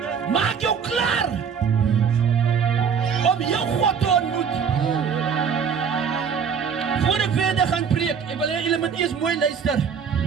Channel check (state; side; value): quieter; left; 6.8 dB